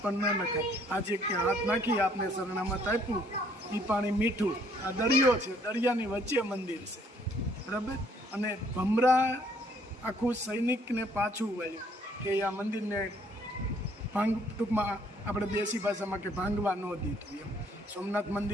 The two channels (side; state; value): both; normal; correlation 0.63